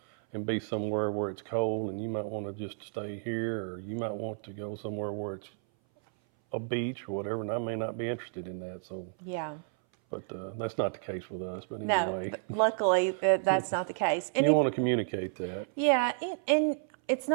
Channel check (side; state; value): left; silent; 57 dB below the other